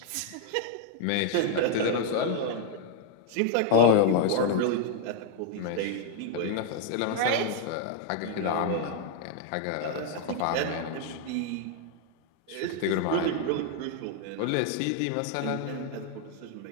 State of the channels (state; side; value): different; both; correlation 0.00